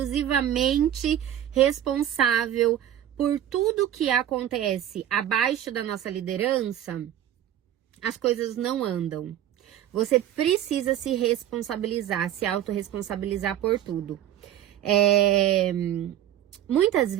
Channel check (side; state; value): left; quieter; 11.3 dB